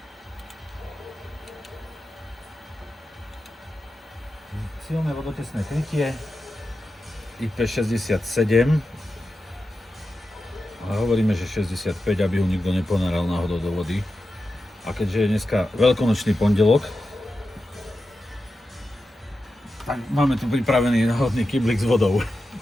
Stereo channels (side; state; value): both; normal; correlation 0.91